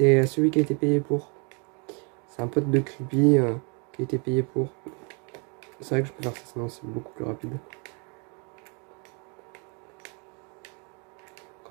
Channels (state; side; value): quieter; left; 35.3 dB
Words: celui qui a été payé pour. C'est un pote de Creepy qui a été payé pour. C'est vrai que je peux faire ça, sinon c'est beaucoup plus rapide.